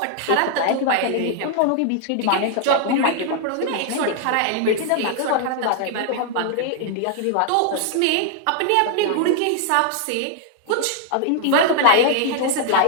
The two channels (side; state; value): both; different; correlation 0.00